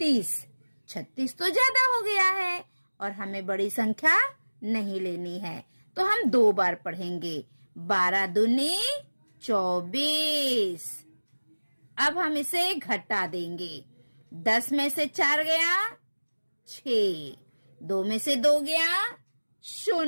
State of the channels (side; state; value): both; inverted; correlation -1.00